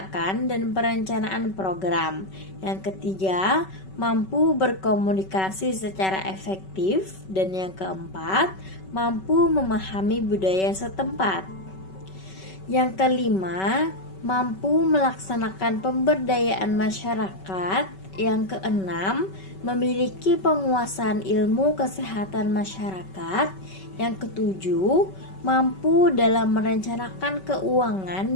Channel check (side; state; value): right; late; 5.3 ms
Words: dan perencanaan program. Yang ketiga, mampu berkomunikasi secara efektif, dan yang keempat, mampu memahami budaya setempat. Yang kelima, mampu melaksanakan pemberdayaan masyarakat. Yang keenam, memiliki penguasaan ilmu kesehatan masyarakat. Yang ketujuh, mampu dalam merencanakan